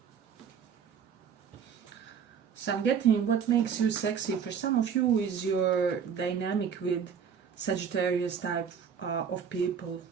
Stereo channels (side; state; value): left; quieter; 7.2 dB